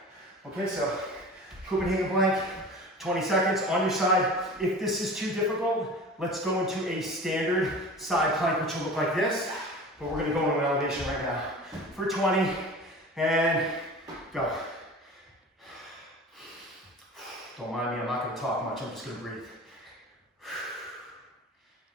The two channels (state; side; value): normal; both; correlation 0.37